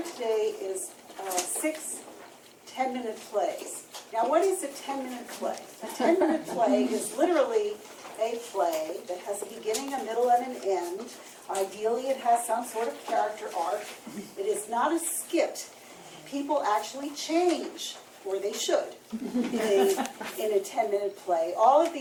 today is 6 10-minute plays. Now, what is a 10-minute play? A 10-minute play is literally a play that has a beginning, a middle, and an end. Ideally, it has some sort of character arc. It is not a skit. People actually change, or they should, in a 10-minute play. All of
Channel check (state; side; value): identical; both; correlation 1.00